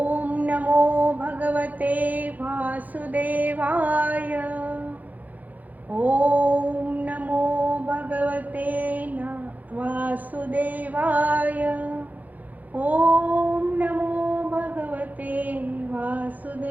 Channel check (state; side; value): late; left; 0.081 ms